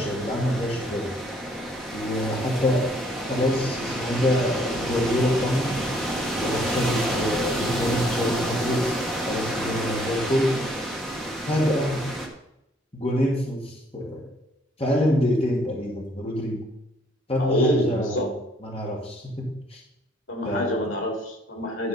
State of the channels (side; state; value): both; normal; correlation 0.64